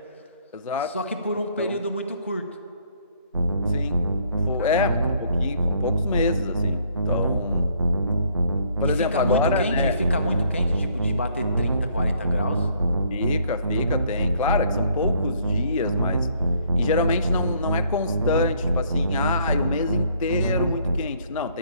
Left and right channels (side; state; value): both; inverted; correlation -0.65